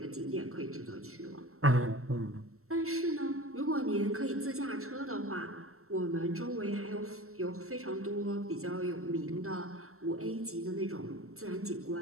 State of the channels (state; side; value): late; left; 0.63 ms